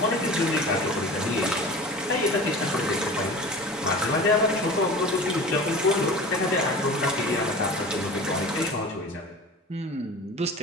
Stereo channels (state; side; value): normal; both; correlation 0.36